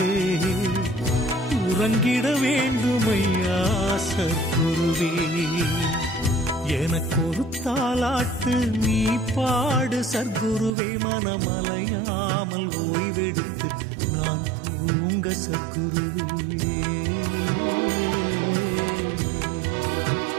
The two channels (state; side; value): drops out; left; at 10.7 s